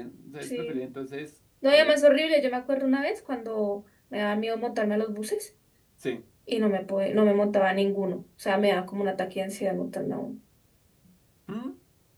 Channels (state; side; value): identical; both; correlation 1.00